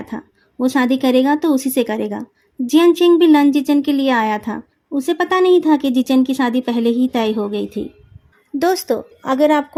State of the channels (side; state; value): both; identical; correlation 1.00